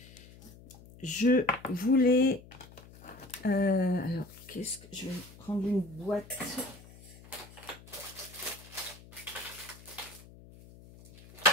je voulais... alors, qu'est-ce que... Je vais prendre une boîte...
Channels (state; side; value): noise; left; hum, 20 dB below the sound